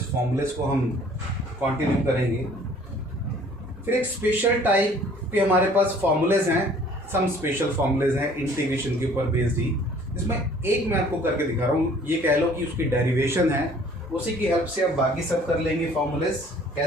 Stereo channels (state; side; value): normal; both; correlation 0.54